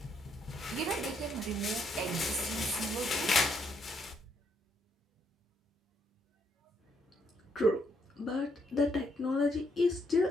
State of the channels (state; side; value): normal; both; correlation 0.74